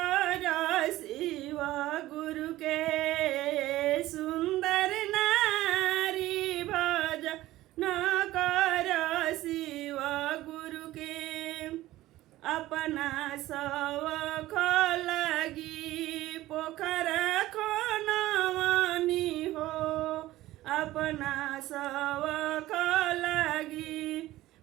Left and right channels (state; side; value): quieter; left; 16.2 dB